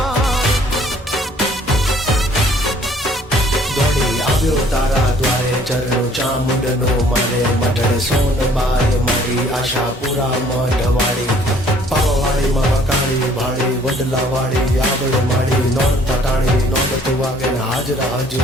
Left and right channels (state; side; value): normal; both; correlation 0.59